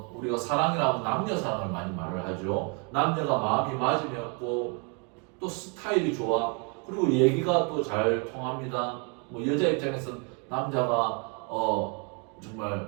우리가 사랑이라고 남녀 사랑을 많이 말을 하죠. 남녀가 마음이 맞으면고 또 스타일이 좋아. 그리고 얘기가 또 잘 통합니다. 여자 입장에서는 남자가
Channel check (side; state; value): left; quieter; 35.9 dB